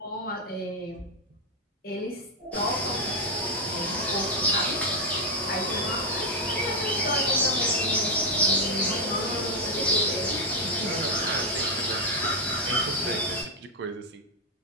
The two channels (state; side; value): normal; both; correlation 0.01